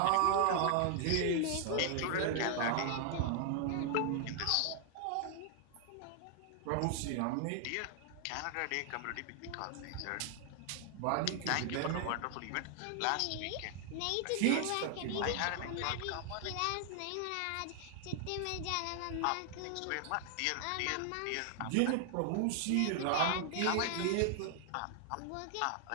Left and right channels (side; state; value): both; different; correlation 0.00